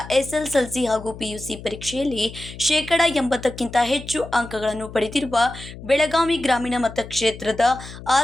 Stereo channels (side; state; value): left; noise; hum, 14 dB below the sound